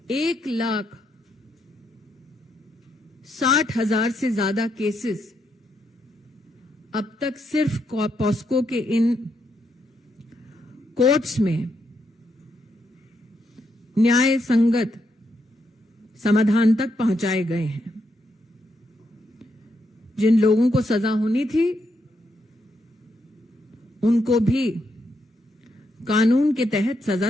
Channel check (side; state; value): both; normal; correlation 0.79